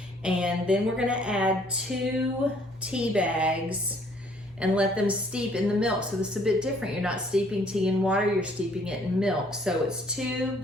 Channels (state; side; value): normal; both; correlation 0.62